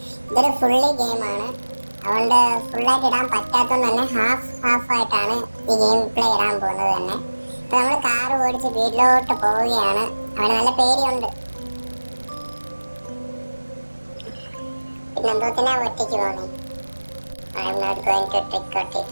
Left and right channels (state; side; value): inverted; both; correlation -1.00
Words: ഇതൊരു ഫുള്ളി ഗെയിമാണ്, അതുകൊണ്ട് ഫുള്ളായിട്ട് ഇടാൻ പറ്റാത്തതുകൊണ്ട് തന്നെ ഹാഫ് ആയിട്ടാണ് ഈ ഗെയിം പ്ലേ ഇടാൻ പോകുന്നത് തന്നെ. ഇപ്പൊ നമ്മൾ കാർ ഓടിച്ച് വീട്ടിലോട്ട് പോവുകയാണ്. അവന് നല്ല പേടിയുണ്ട്. പിന്നെ എന്തോത്തിനാ ഒറ്റയ്ക്ക് പോകുന്നേ? I am not going to trick or